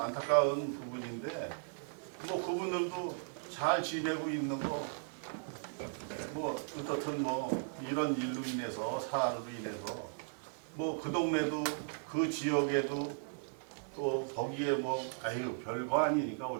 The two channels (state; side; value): silent; left; digital silence